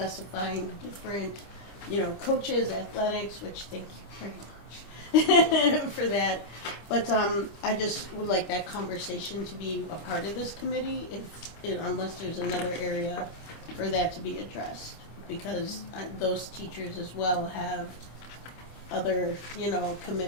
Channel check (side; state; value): right; late; 25 ms